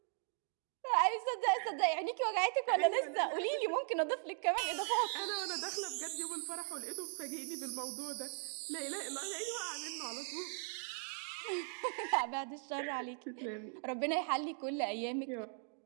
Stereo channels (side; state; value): left; silent; 52 dB below the other